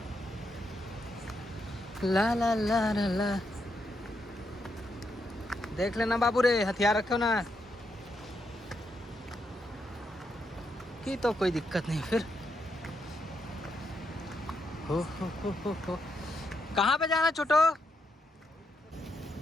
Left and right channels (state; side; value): normal; both; correlation 0.80